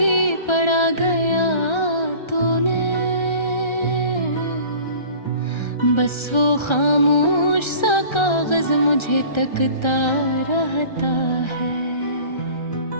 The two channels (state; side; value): late; right; 1.3 ms